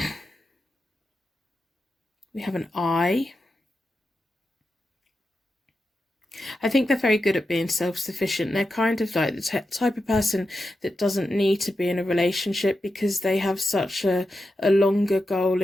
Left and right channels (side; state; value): both; normal; correlation 0.89